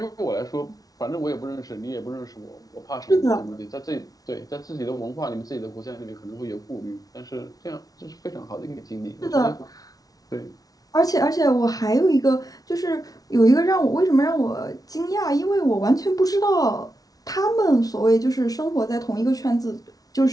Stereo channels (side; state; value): right; late; 0.18 ms